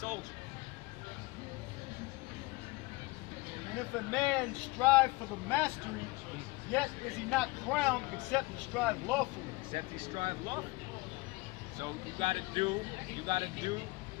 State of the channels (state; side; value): quieter; right; 23.3 dB